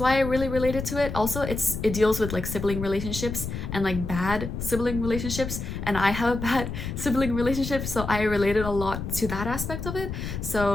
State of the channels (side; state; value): left; noise; rumble, 6 dB below the sound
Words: I really related to it. Also, it deals with like sibling relationships and like bad sibling relationships, and I have a bad sibling relationship, so I related a lot to that aspect of it.